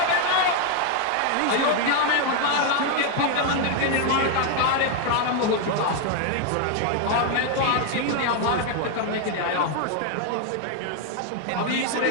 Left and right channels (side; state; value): both; different; correlation 0.00